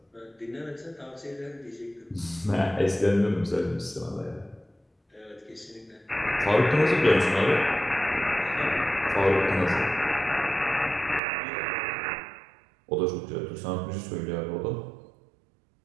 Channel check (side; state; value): left; drops out; at 11.2 s